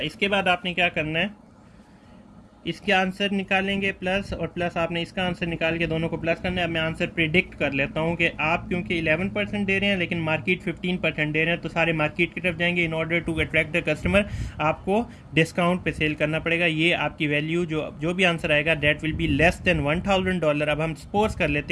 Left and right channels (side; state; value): both; identical; correlation 1.00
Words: इसके बाद आपने क्या करना है, इसके आंसर निकालेंगे प्लस और प्लस आपने इसका आंसर निकाल के दोनों को प्लस करना है। अब मैं आंसर प्रिडिक्ट कर लेता हूँ कि आप क्योंकि 11% दे रहे हैं लेकिन मार्केट 15% दे रहे हैं, तो सारे मार्केट की तरफ जाएंगे। In order to attract the customer आपको डिस्काउंट पे सेल करना पड़ेगा। ये आपकी वैल्यू जो भी आंसर आएगा that will be less than $1000। अब हम सपोज कर